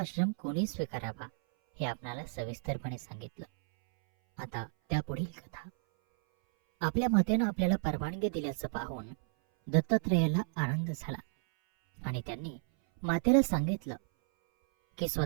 कोणी स्वीकारावा हे आपणाला सविस्तरपणे सांगितलं. आता त्या पुढील कथा. आपल्या मातेनं आपल्याला परवानगी दिल्याचं पाहून दत्तात्रेयाला आनंद झाला आणि त्यांनी मातेला सांगितलं की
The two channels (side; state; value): left; silent; 56 dB below the other